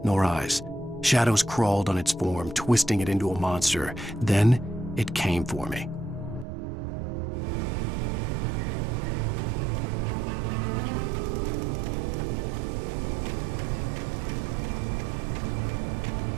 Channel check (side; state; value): left; drops out; at 6.5 s